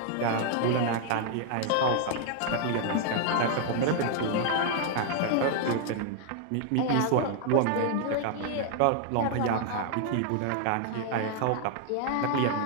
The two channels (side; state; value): both; different; correlation 0.00